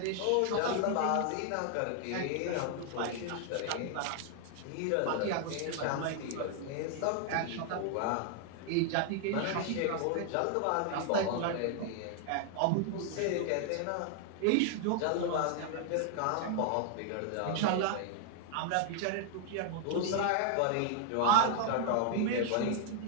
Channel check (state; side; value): different; both; correlation 0.00